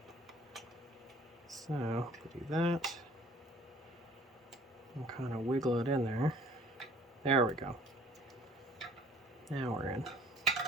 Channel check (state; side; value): normal; both; correlation 0.54